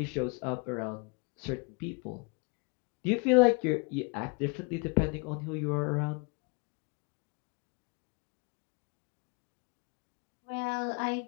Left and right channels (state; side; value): quieter; right; 33.0 dB